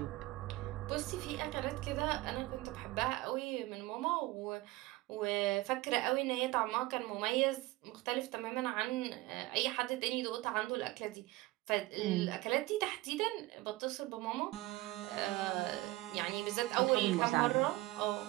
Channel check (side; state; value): left; quieter; 19.5 dB